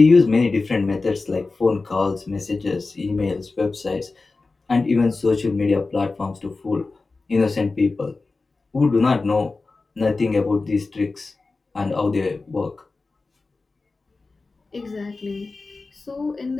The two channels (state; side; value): quieter; right; 3.7 dB